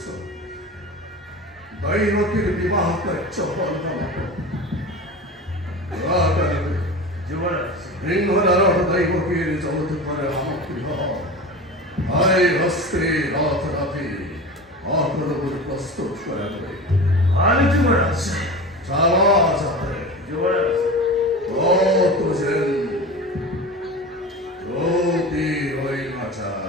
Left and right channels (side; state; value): both; normal; correlation 0.31